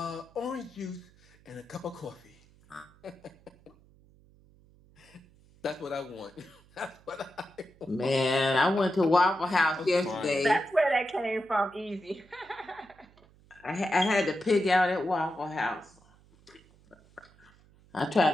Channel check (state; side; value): noise; right; hum, 28 dB below the sound